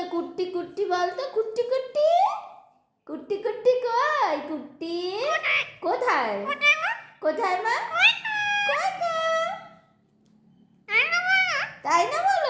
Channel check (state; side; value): identical; both; correlation 1.00